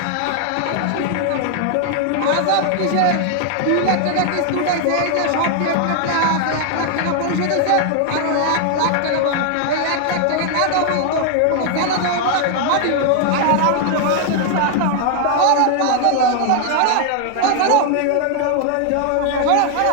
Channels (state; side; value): different; both; correlation 0.00